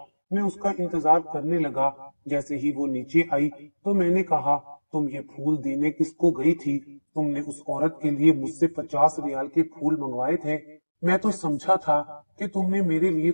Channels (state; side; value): inverted; both; correlation -1.00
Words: मैं उसका इंतजार करने लगा। जैसे ही वो नीचे आई तो मैंने कहा, तुम ये फूल देने किसको गई थी? तुमने उस औरत के लिए मुझसे 50 रियाल के फूल मंगवाए थे। मैं तो समझा था कि तुमने मेरे लिए